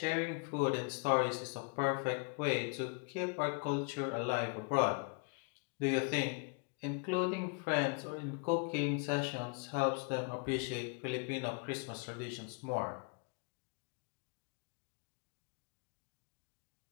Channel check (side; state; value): right; quieter; 34.0 dB